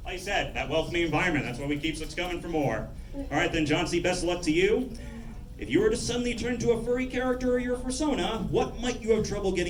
like I said, that welcoming environment, that's what we keep us coming for more. All right then, Johnsy, best of luck to you. If you were to suddenly turn to a furry character or your persona, what might you have trouble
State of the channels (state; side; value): identical; both; correlation 1.00